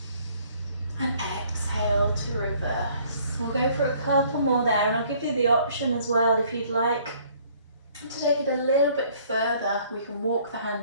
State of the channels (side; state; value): both; inverted; correlation -0.59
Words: And exhale to reverse. We'll go for a couple more there, and I'll give you the option as well if you'd like to take it a little bit further. We can walk the